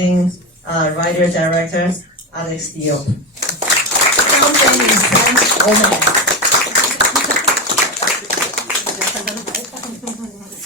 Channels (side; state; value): both; normal; correlation 0.16